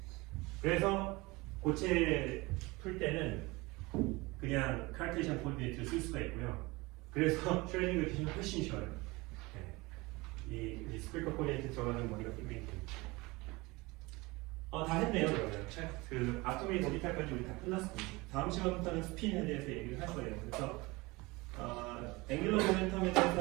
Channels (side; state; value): left; quieter; 23.2 dB